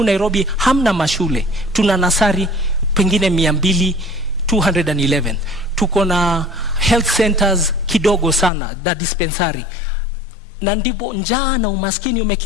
Nairobi hamna mashule. Tuna nasari pengine 211. Tuko na health centers kidogo sana, da dispensary. Na ndipo njaa na umaskini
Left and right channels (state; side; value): drops out; right; at 8.5 s